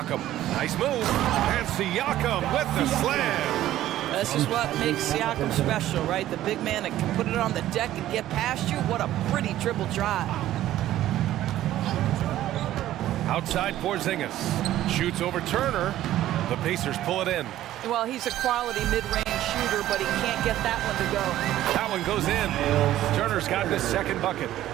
Nice move. And Siakam with the slam. This is what makes Siakam special, right? The big man that can put it on the deck and get past you. What a pretty dribble drive. Outside Porzingis. Shoots over Turner. The Pacers pull it in. Well, he's a quality mid-range shooter, but he can't get that one to go. That one goes in. Turner's gotten his second bucket.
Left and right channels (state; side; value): quieter; left; 13.6 dB